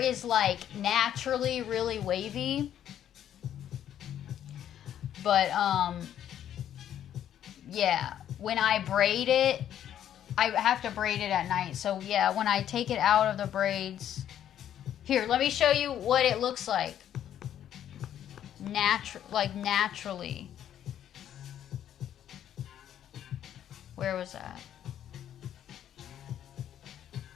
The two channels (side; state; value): right; quieter; 10.5 dB